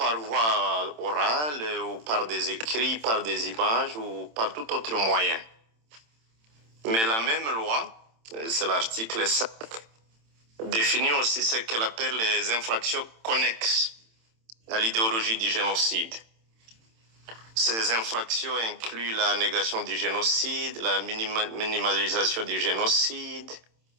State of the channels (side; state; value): left; late; 27 ms